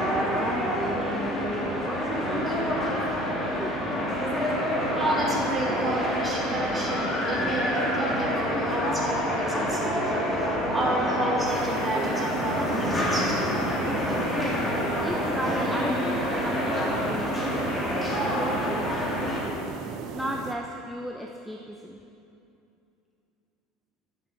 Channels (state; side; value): normal; both; correlation 0.50